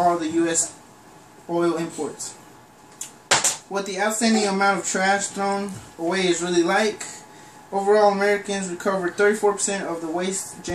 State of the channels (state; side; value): identical; both; correlation 1.00